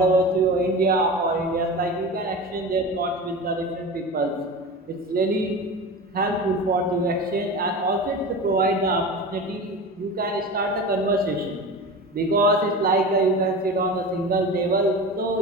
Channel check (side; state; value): both; normal; correlation 0.30